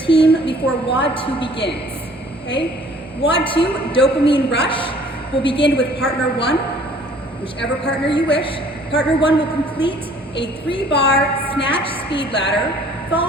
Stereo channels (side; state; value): both; normal; correlation 0.55